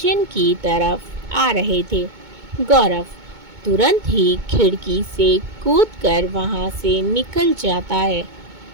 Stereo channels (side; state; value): left; late; 2.2 ms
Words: की तरफ आ रहे थे। गौरव तुरंत ही खिड़की से कूदकर वहां से निकल जाता है।